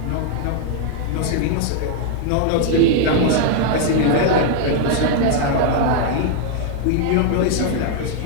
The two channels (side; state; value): both; different; correlation 0.00